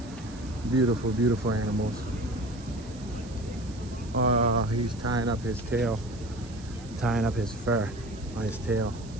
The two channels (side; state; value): right; noise; hiss, 21 dB below the sound